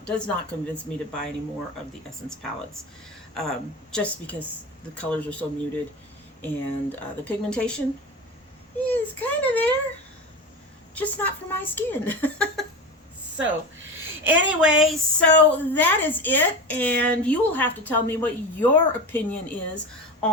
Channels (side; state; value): both; normal; correlation 0.26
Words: does not convince me to buy any more of the Essence palettes. Just because the colors are so muted, and the pigmentation is kind of there, just not for my skin. So anyway, so that is it, and you will have to tell me what your opinion is